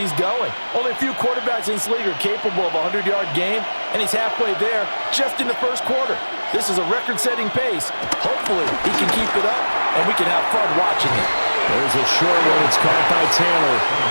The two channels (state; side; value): inverted; both; correlation -1.00